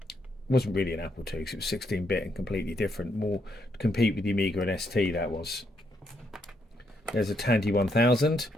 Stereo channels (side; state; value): both; normal; correlation 0.76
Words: Wasn't really an Apple II because it was 16-bit and completely different, more to compete with the Amiga and ST. That was. There's a Tandy 1000,